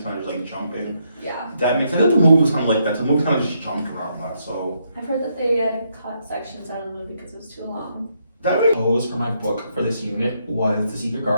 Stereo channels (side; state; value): both; inverted; correlation -0.76